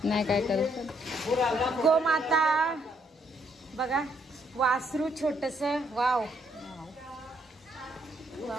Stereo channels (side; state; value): both; normal; correlation 0.72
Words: नाही काय करत. गोमाता बघा वासरू छोटस. वाव